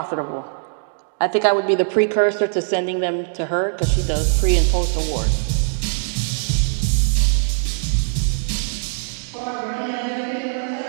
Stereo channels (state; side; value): silent; left; digital silence